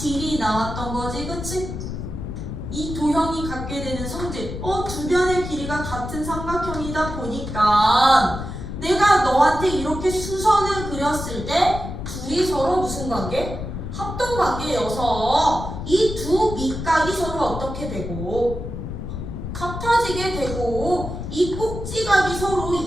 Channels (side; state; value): left; noise; rumble, 7 dB below the sound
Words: 나왔던 거지. 그치? 이 도형이 갖게 되는 성질. 두 변의 길이가 같은 삼각형이다 보니까 내가 너한테 이렇게 수선을 그렸을 때 둘이 서로 무슨 관계? 합동 관계여서 이 두 밑각이 서로 어떻게 되고 같아지게 되고 이 꼭지각이 서로